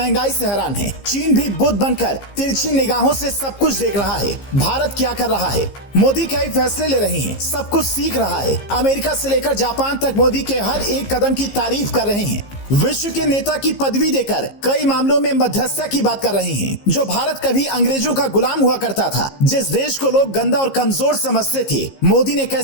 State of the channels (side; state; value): right; late; 15 ms